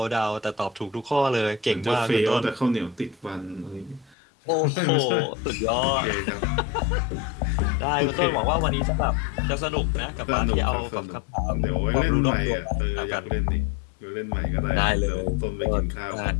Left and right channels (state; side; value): drops out; right; at 4.2 s